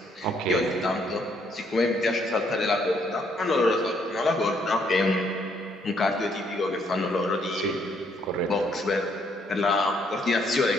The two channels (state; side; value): normal; both; correlation 0.70